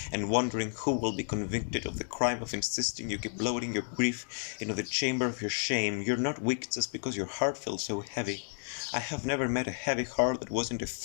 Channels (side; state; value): right; silent; digital silence